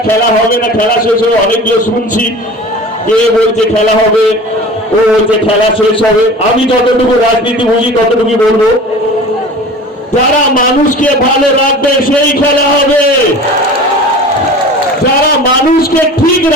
খেলা হবে না, খেলা শেষ হবে। অনেকগুলো শুনছি, কে বলছে খেলা হবে, ও বলছে খেলা শেষ হবে। আমি যতটুকু রাজনীতি বুঝি ততটুকু বলবো, যারা মানুষকে ভালো রাখবে সেই খেলা হবে, যারা মানুষকে ঠিক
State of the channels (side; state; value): both; normal; correlation 0.39